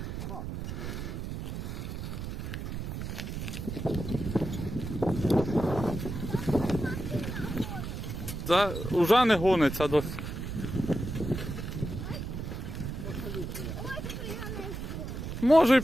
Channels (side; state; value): right; noise; rumble, 5 dB below the sound